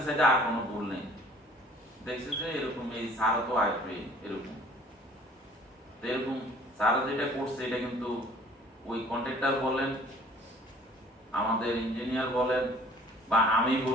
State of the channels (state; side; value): normal; both; correlation 0.53